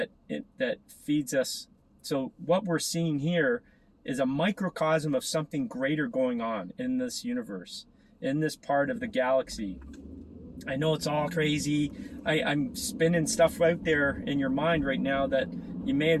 feeds us. So what we're seeing here is a microcosm of something greater going on in this universe, in this part of the galaxy. I know it's all crazy. I'm spinning stuff out there in your mind right now that you may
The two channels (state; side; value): identical; both; correlation 1.00